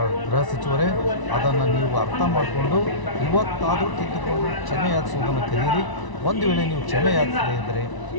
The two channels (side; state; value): right; late; 1.0 ms